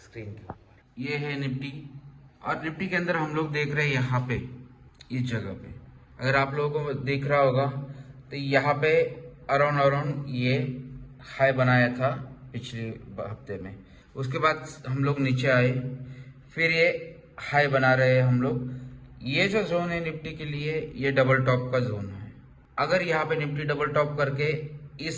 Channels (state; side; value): identical; both; correlation 1.00